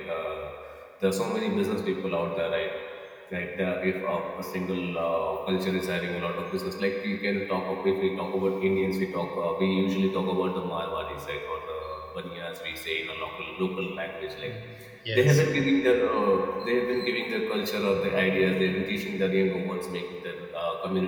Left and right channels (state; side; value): identical; both; correlation 1.00